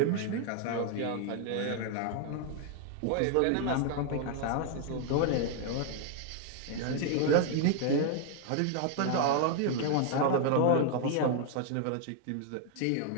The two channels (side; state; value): both; different; correlation 0.00